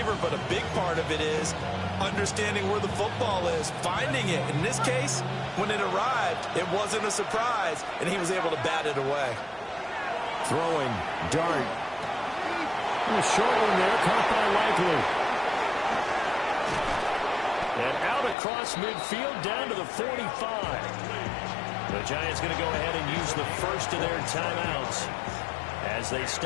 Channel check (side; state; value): right; drops out; at 18.4 s